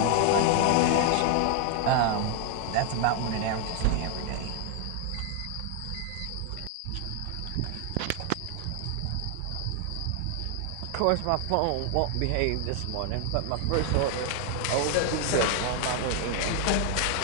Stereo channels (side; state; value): both; different; correlation 0.00